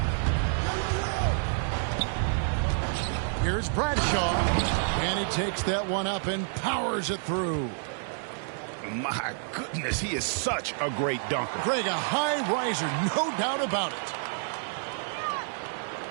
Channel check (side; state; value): left; silent; digital silence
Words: Here's Bradshaw. And he takes that one up and powers it through. My goodness, he is such a great dunker. Greg, a high riser, no doubt about it.